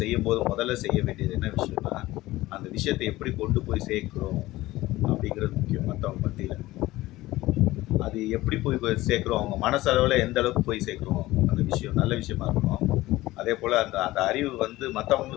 செய்யும்போது முதல்ல செய்ய வேண்டியது என்ன விஷயம்னா, அந்த விஷயத்தை எப்படி கொண்டு போய் சேர்க்கிறோம் அப்படிங்கிறது முக்கியம் மற்றவங்க மத்தியில். அது எப்படி போய் சேர்க்குறோம், அவங்க மனசளவில் எந்த அளவுக்கு போய் சேர்க்குறோம் அந்த விஷயம் நல்ல விஷயமா இருக்கணும். அதே போல் அந்த அந்த அறிவு வந்து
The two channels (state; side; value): quieter; right; 17.8 dB